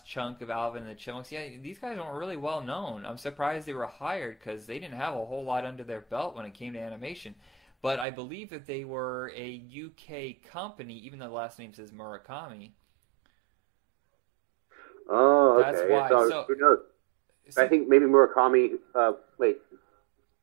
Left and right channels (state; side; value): drops out; left; at 8.1 s